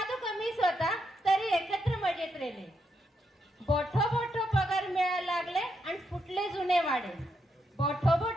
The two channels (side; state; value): both; normal; correlation 0.80